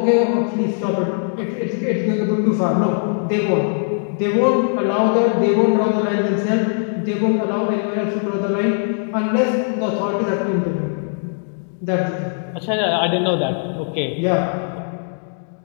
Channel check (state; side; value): silent; right; digital silence